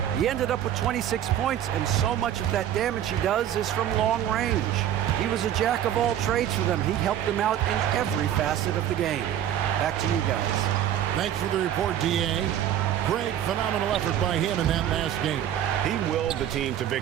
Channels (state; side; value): quieter; left; 10.8 dB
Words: He ended up with 26 points, and so much of that damage he does is from long range. He was a jack of all trades for them. He helped them out in every facet of the game. Back to you guys. Thanks for the report, D.A. Great, phenomenal effort by him in that last game. He willed the team to